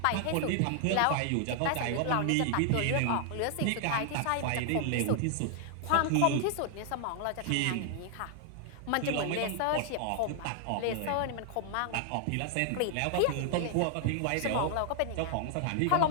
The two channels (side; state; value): both; different; correlation 0.00